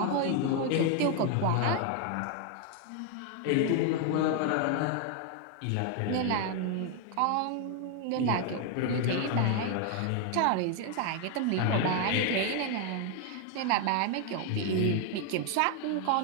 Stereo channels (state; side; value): different; both; correlation 0.01